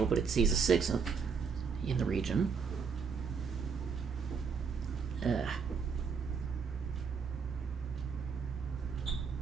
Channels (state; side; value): quieter; left; 5.8 dB